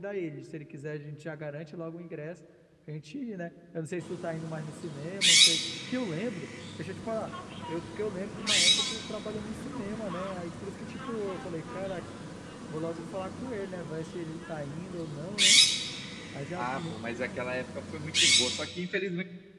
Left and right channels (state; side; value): identical; both; correlation 1.00